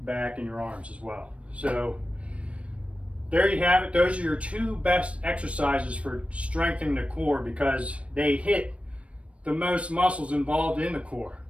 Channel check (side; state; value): left; late; 0.062 ms